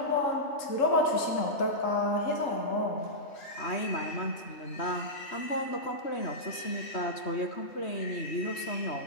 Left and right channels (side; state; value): right; late; 3.1 ms